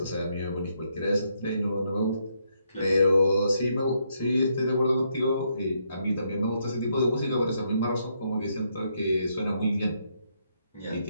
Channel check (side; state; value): both; inverted; correlation -0.76